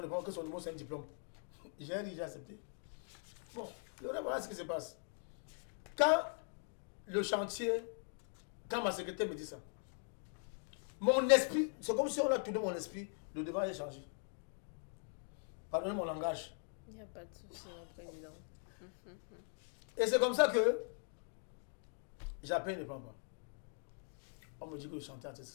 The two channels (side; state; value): right; silent; 50 dB below the other